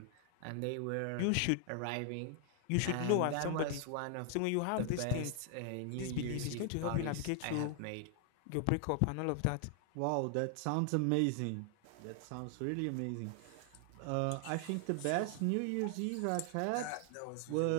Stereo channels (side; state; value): both; different; correlation 0.00